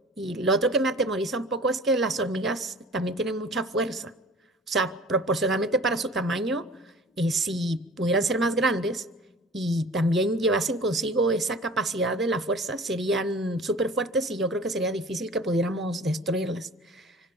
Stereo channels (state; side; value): normal; both; correlation 0.44